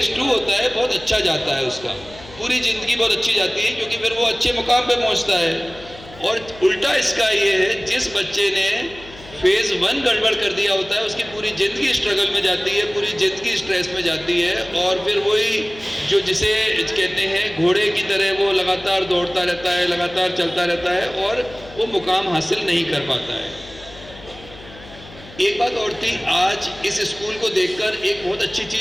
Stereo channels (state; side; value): noise; left; hum, 19 dB below the sound